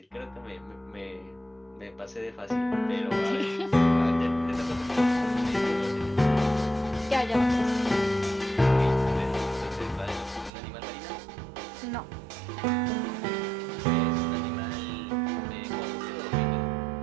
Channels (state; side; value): drops out; left; at 10.5 s